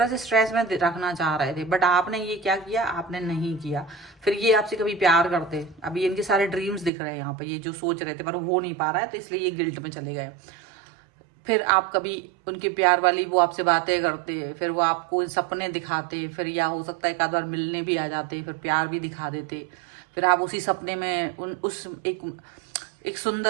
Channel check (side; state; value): left; drops out; at 6.9 s